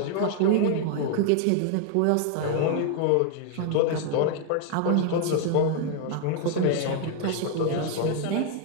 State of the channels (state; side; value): different; both; correlation 0.00